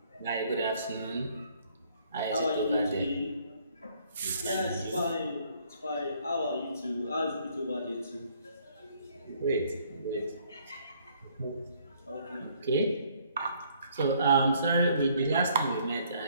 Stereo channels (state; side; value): inverted; both; correlation -0.64